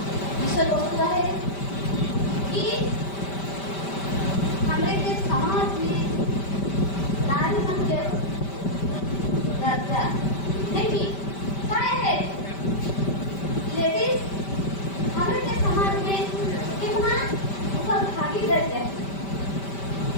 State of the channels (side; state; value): right; late; 5.1 ms